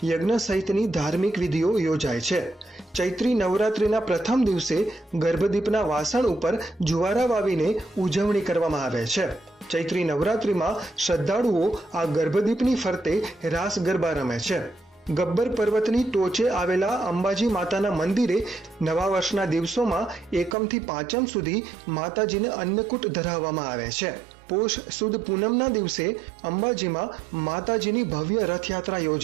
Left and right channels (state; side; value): drops out; left; at 20.6 s